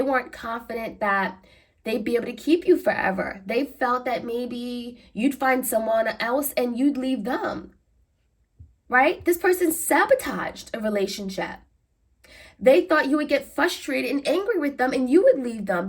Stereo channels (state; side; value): identical; both; correlation 1.00